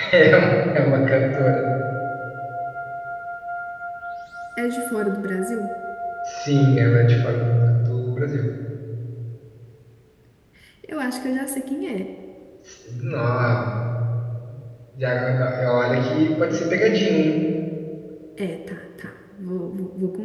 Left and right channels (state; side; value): identical; both; correlation 1.00